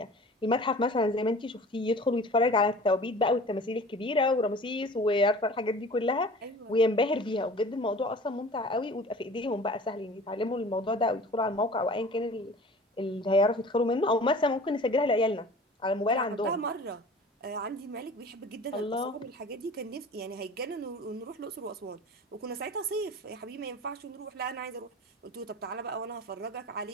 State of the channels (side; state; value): both; normal; correlation 0.42